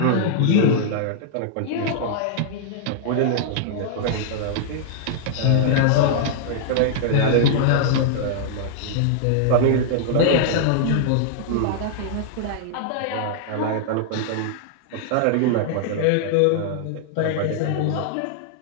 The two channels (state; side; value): different; both; correlation -0.01